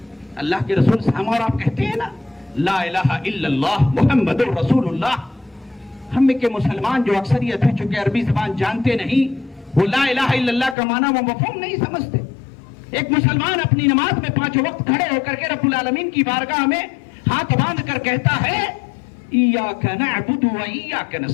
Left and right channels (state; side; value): drops out; right; at 10.8 s